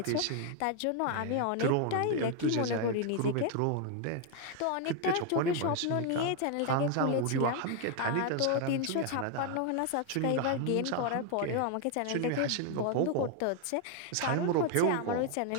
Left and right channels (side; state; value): both; different; correlation 0.00